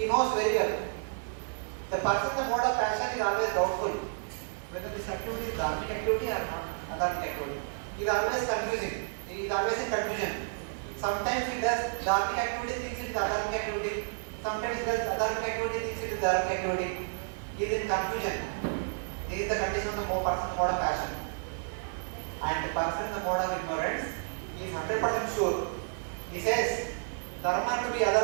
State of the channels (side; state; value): left; silent; digital silence